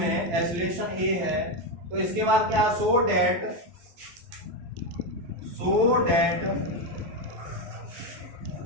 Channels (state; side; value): late; left; 12 ms